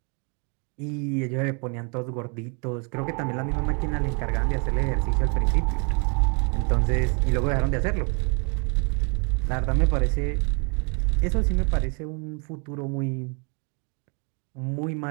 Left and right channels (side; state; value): left; quieter; 35.7 dB